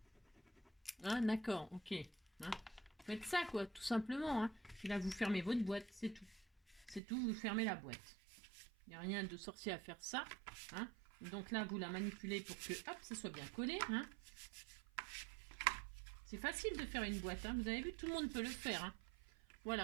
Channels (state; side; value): drops out; left; at 7.0 s